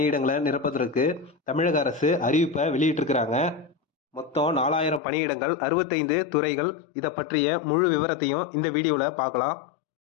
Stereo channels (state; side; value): drops out; right; at 5.0 s